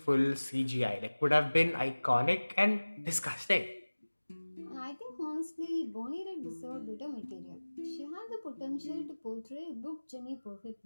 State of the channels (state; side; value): inverted; both; correlation -1.00